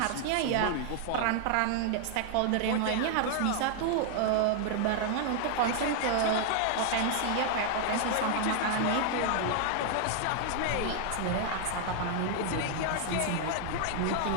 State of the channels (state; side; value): different; both; correlation 0.00